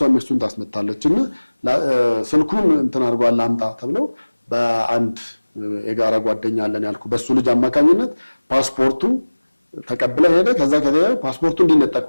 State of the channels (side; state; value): both; inverted; correlation -1.00